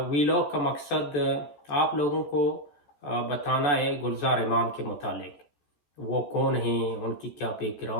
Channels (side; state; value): right; late; 14 ms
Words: ویلاگ کا مقصد آپ لوگوں کو بتانا ہے گلزار امام کے متعلق۔ وہ کون ہیں، ان کی کیا بیک